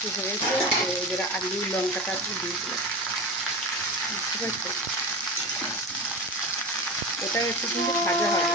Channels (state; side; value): normal; both; correlation 0.26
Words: হয়েছে, তো এবার আলু লঙ্কাটা একটু দিয়ে দিলাম, বুঝতে পারছো? এটা একটু কিন্তু ভাজা হবে।